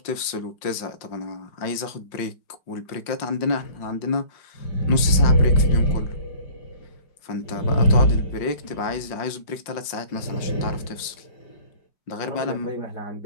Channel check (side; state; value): right; late; 5.6 ms